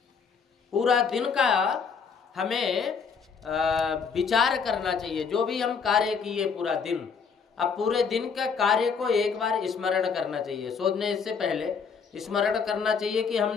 पूरा दिन का हमें विचार करना चाहिए। जो भी हम कार्य किए पूरा दिन, अब पूरे दिन का कार्य को एक बार स्मरण करना चाहिए। सोने से पहले स्मरण करना चाहिए कि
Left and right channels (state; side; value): quieter; right; 5.9 dB